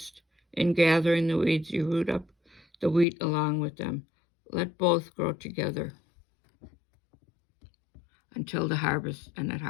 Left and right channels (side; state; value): right; drops out; at 3.1 s